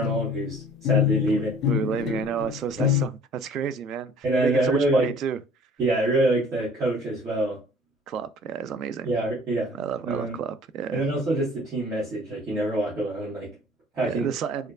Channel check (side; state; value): both; normal; correlation 0.51